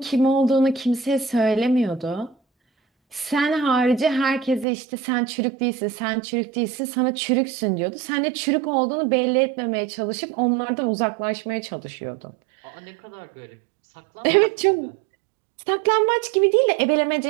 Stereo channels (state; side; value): drops out; left; at 4.7 s